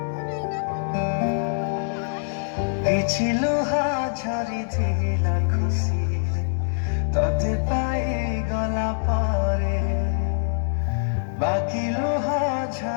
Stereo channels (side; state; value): right; silent; digital silence